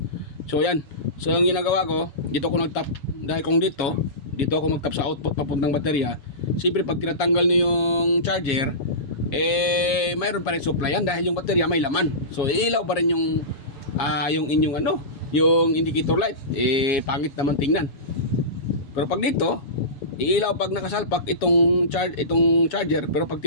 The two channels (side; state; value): right; late; 7.3 ms